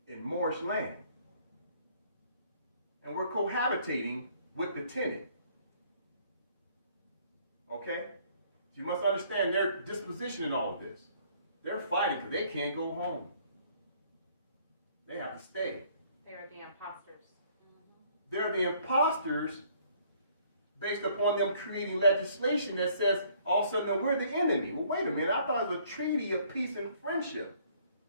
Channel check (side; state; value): both; inverted; correlation -0.61